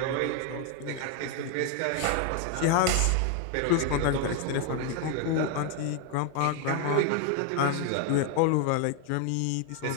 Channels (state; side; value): different; both; correlation 0.00